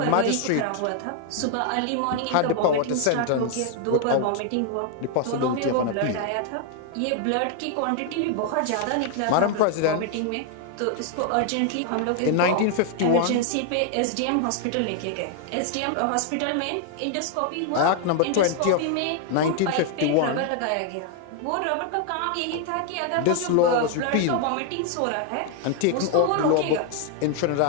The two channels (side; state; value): both; different; correlation 0.00